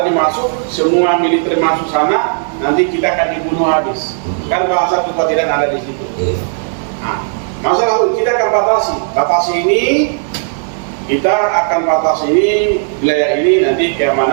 masuk, semua militer masuk sana, nanti kita akan dibunuh habis. Kan bahasa kekhawatiran ada di situ. Nah, masalah kita akan batasi ini. Kita akan batasi ini, wilayah ini, nanti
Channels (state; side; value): silent; left; digital silence